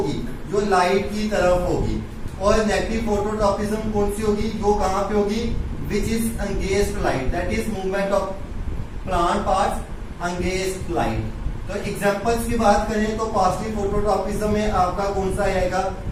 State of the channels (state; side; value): identical; both; correlation 1.00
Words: जो लाइट की तरफ होगी। और नेगेटिव फोटोट्रॉपिज्म कौन सी होगी, जो कहां पे होगी, which is against light, that is movement of plant parts against light. तो एग्जांपल्स की बात करें तो पॉजिटिव फोटोट्रॉपिज्म में आपका कौन सा आएगा,